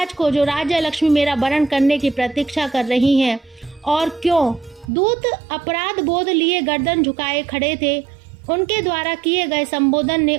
को, जो राज्य लक्ष्मी मेरा वरण करने की प्रतीक्षा कर रही हैं। और क्यों? दूत अपराध बोध लिए गर्दन झुकाए खड़े थे। उनके द्वारा किए गए संबोधन ने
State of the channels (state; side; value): drops out; left; at 4.9 s